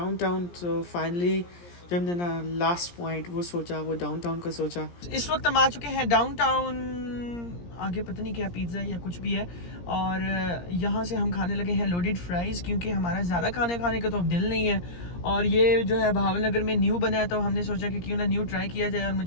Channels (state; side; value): late; right; 17 ms